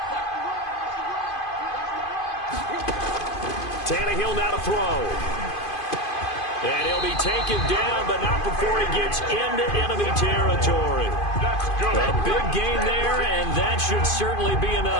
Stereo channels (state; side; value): late; right; 2.5 ms